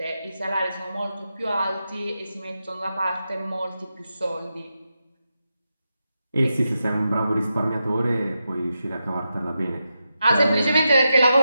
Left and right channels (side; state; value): both; inverted; correlation -0.88